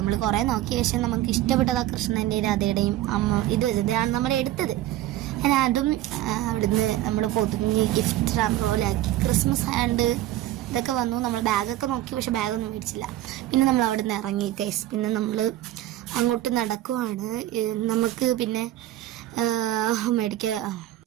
കുറേ നോക്കിയ ശേഷം നമുക്ക് ഇഷ്ടപ്പെട്ടത് ആ കൃഷ്ണൻ്റെയും രാധയുടെയും അമ്മ ഇതാണ് നമ്മൾ എടുത്തത്. അങ്ങനെ അതും അവിടുന്ന് നമ്മൾ പൊതുങ്ങി ഗിഫ്റ്റ് റാമ്പ് പോലെ ആക്കി. ക്രിസ്മസ് ഹാൻഡ് ഇതൊക്കെ വന്നു. നമ്മൾ ബാഗൊക്കെ നോക്കി, പക്ഷെ ബാഗൊന്നും മേടിച്ചില്ല. പിന്നെ നമ്മൾ അവിടെ നിന്ന് ഇറങ്ങി ഗൈസ്. പിന്നെ നമ്മൾ അങ്ങോട്ട് നടക്കുവാണ്. നമുക്ക് പിന്നെ മേടിക്കുക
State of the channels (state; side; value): quieter; left; 14.3 dB